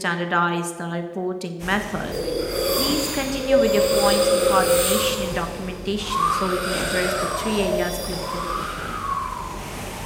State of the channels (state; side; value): identical; both; correlation 1.00